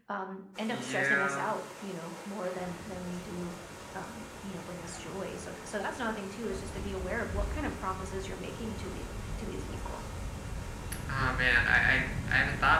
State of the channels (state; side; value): identical; both; correlation 1.00